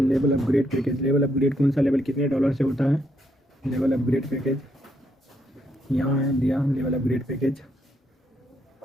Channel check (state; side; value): normal; both; correlation 0.76